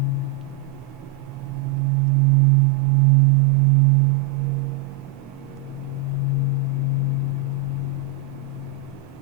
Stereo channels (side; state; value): left; quieter; 7.7 dB